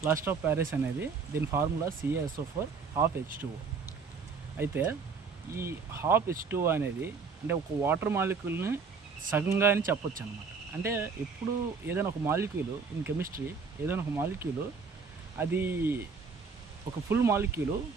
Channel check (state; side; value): quieter; left; 5.1 dB